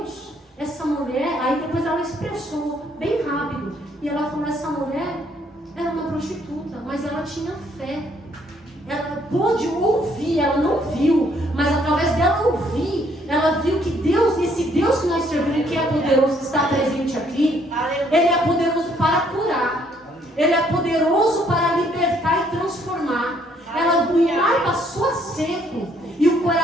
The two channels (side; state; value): both; normal; correlation 0.66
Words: essa mulher, aí depois ela expressou bem rápido. E ela falou, essa mulher era uma prostituta, mas ela tinha fé. Ela pôde ouvir, ela não viu, mas através dela ouvir, ela viu que Deus, esse Deus que nós servimos, que é poderoso, que está presente aqui, Ele é poderoso para curar, Ele é poderoso para libertar e transformar. O mar passou a seco e o